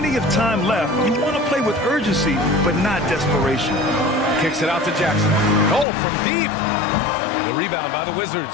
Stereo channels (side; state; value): right; drops out; at 5.9 s